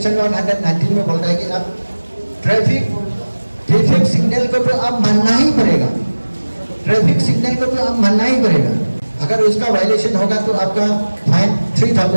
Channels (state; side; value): inverted; both; correlation -1.00